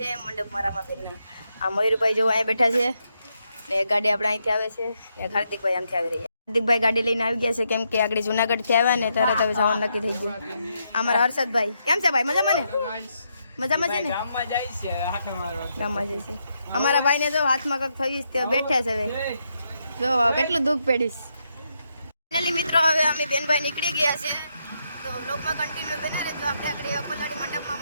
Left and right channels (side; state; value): both; inverted; correlation -0.80